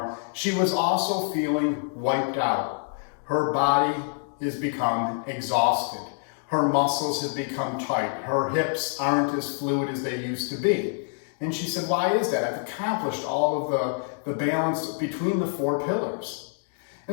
she was also feeling wiped out. Her body has become exhausted. Her muscles have become tight. Her hips aren't as fluid as they used to be. And she said, why is that? I've accomplished all of the balance between the 4 pillars.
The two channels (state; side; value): silent; right; 61 dB below the other